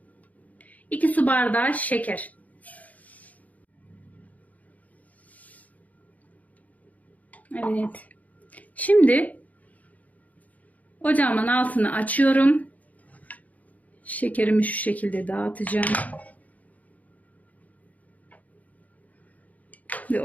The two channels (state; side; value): late; right; 0.075 ms